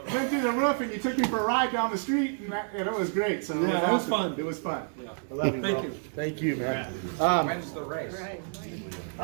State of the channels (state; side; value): silent; left; digital silence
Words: went through the roof, and you took me for a ride down the street, and it was great. So Yeah, it was fun. It was fun. I love you, bro. Thank you. Thanth you, man. When's the race? We